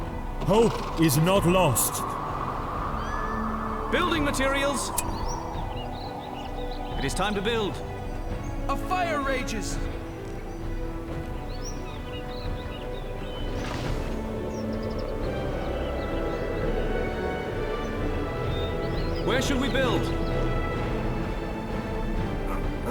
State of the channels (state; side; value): identical; both; correlation 1.00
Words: Hope is not lost. Building materials. It is time to build. A fire rages! Where should we build?